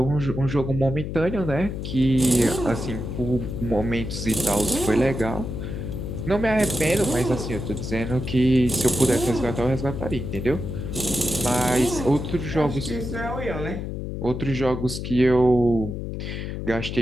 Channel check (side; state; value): left; noise; hum, 5 dB below the sound